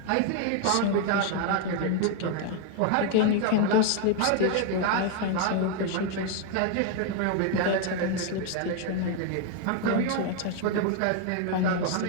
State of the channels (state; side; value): different; both; correlation 0.00